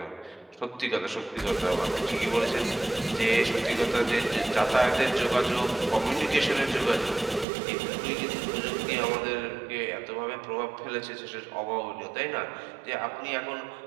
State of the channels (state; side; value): drops out; left; at 7.5 s